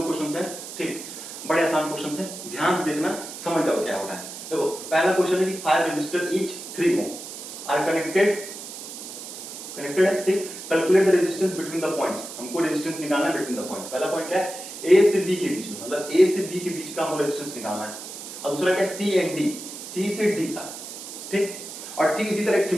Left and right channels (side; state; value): right; noise; hiss, 11 dB below the sound